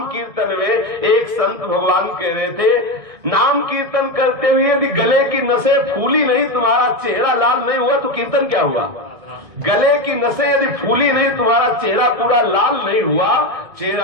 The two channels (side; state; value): left; late; 1.6 ms